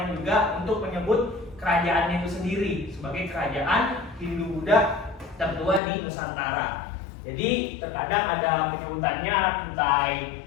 juga untuk menyebut kerajaannya itu sendiri sebagai kerajaan Hindu-Buddha tertua di Nusantara. Jadi terkadang ada penyebutannya Kutai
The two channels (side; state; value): right; drops out; at 5.8 s